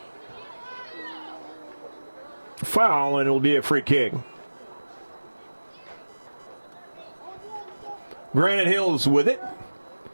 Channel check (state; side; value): inverted; both; correlation -1.00